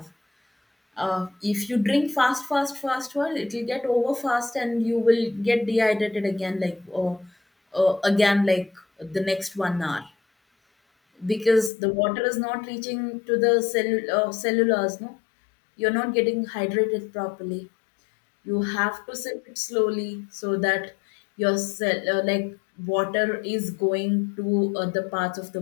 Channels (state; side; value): drops out; right; at 11.7 s